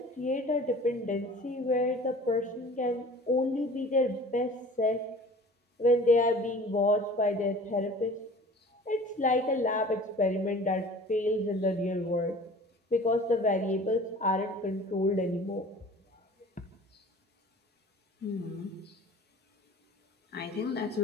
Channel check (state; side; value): normal; both; correlation 0.44